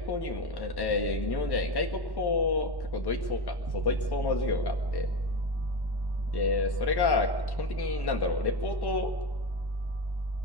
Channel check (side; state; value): right; late; 1.1 ms